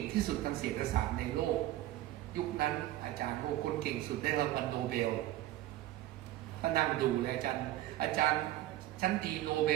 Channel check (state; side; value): quieter; left; 15.0 dB